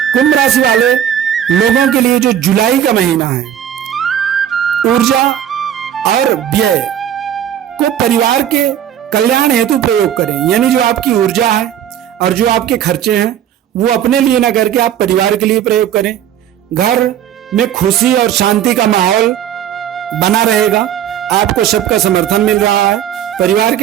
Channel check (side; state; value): left; quieter; 10.2 dB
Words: कुंभ राशि वाले लोगों के लिए जो जुलाई का महीना है, ऊर्जा और व्यय को परिवार के कल्याण हेतु प्रयोग करें। यानी जो आपकी ऊर्जा है और जो आपके खर्चे हैं वो अपने लिए ना करके आप परिवार के लिए प्रयोग करें। घर में खुशी और शांति का माहौल बना रहेगा। आपको सबका समर्थन मिल रहा है। परिवार